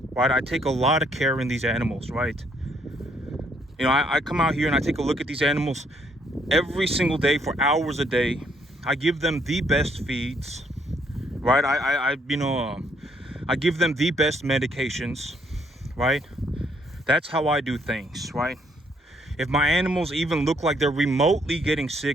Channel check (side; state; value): both; normal; correlation 0.69